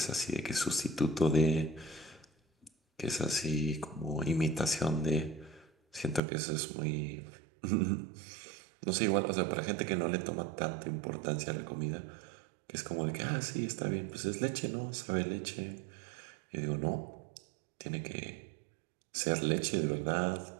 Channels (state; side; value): drops out; left; at 6.2 s